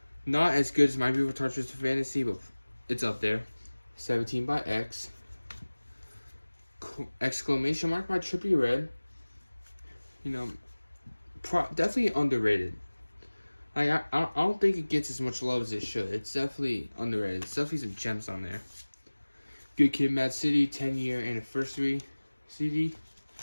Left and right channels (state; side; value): inverted; both; correlation -1.00